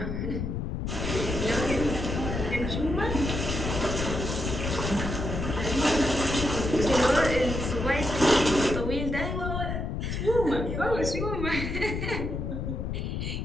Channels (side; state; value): left; noise; rumble, 3 dB below the sound